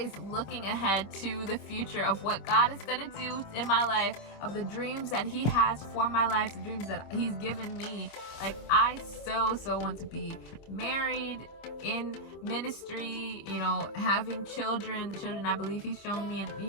looking ahead to the future of what God is going to do in my life, of the dreams that He has for my life, the dreams that He's given me. Like, I so want to be married, in ministry, you know, having children, the children I believe He's shown me, and,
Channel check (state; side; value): late; right; 26 ms